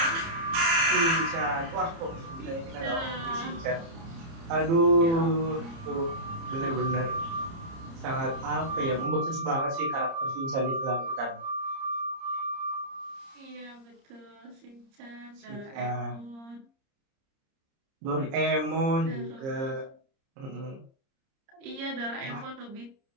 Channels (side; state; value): left; late; 30 ms